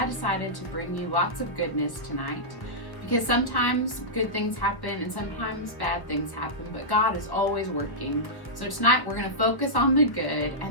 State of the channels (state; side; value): late; right; 1.1 ms